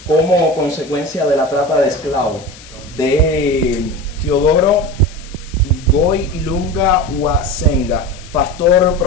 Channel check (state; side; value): noise; left; hiss, 20 dB below the sound